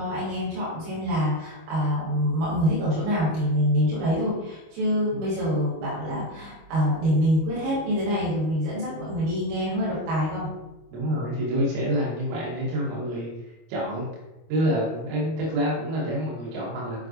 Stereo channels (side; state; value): left; late; 25 ms